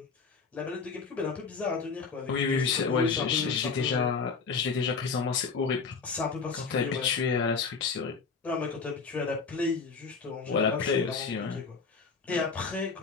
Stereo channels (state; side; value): quieter; right; 5.0 dB